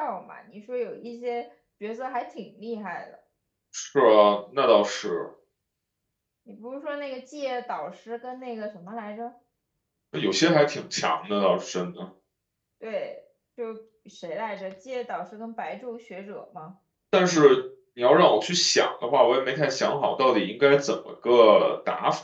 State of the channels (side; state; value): both; identical; correlation 1.00